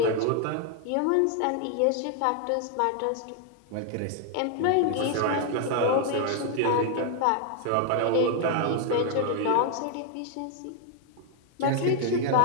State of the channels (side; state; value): both; different; correlation 0.00